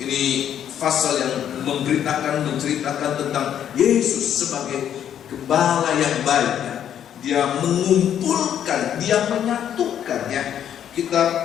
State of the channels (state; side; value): quieter; right; 9.8 dB